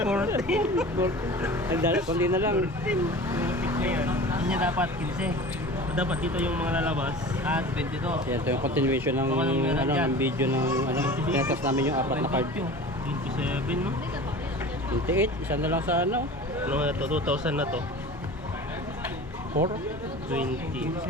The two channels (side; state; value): both; normal; correlation 0.37